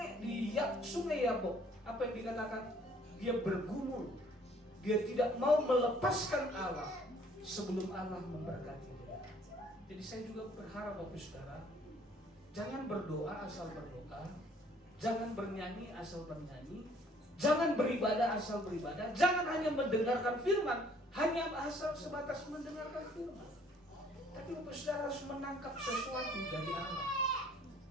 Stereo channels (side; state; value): both; normal; correlation 0.59